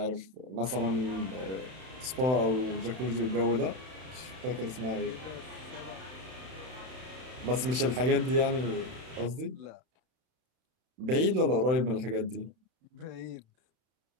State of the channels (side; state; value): left; late; 31 ms